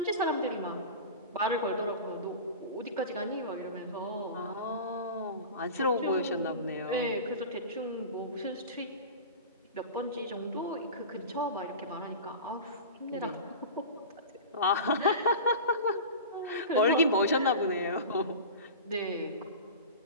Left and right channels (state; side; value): inverted; both; correlation -0.32